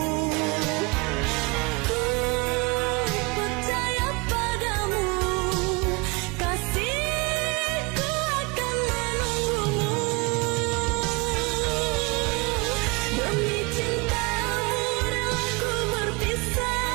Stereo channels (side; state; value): left; quieter; 27.8 dB